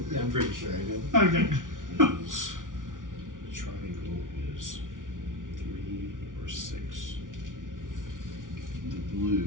Yeah, I'm pretty sure I did. Okay. is, the triangle is 3 or 6. The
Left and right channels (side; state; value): left; late; 0.88 ms